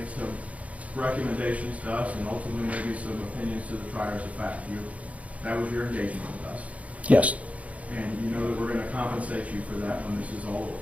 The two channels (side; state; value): left; late; 0.067 ms